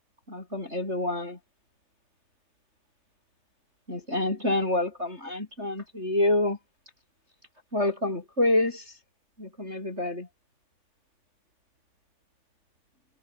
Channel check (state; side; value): late; left; 3.3 ms